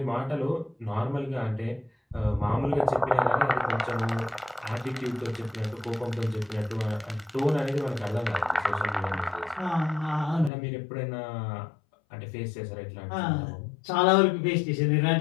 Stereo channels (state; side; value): drops out; right; at 10.5 s